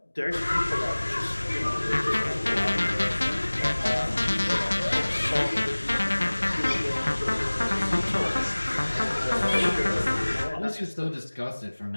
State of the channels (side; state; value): both; inverted; correlation -1.00